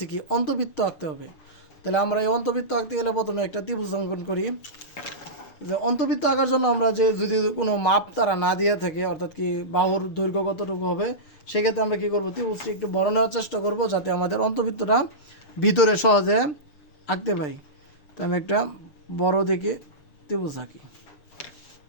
কি অন্তবৃত্ত আঁকতে হবে। তাহলে আমরা এই অন্তবৃত্ত আঁকতে গেলে প্রথমে একটা ত্রিভুজ অঙ্কন করি। যে অন্তবৃত্ত আঁকার জন্য আমরা যে যদি কোনো মাপ তারা না দিয়ে থাকে, অর্থাৎ কি বাহুর দৈর্ঘ্য কতটুকু হবে, সেক্ষেত্রে আমরা কী করবো, ত্রিভুজটি একটু বড় নেওয়ার চেষ্টা করব যাতে আমাদের অন্তবৃত্তটা ভিতরে সহজে আঁকতে পারি। তো আমি একটা বড় দেখে ত্রিভুজ আঁকি।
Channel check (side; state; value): right; late; 6.5 ms